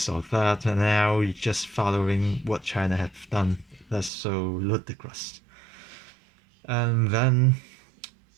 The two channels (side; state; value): left; drops out; at 4.1 s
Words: or that, and now you're just following what China have done. That's so ludicrous. And then